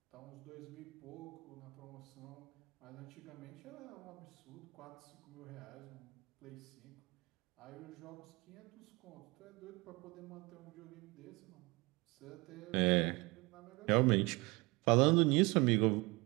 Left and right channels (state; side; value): quieter; left; 25.2 dB